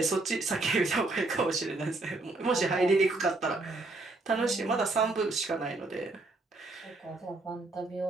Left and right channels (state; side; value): quieter; left; 3.1 dB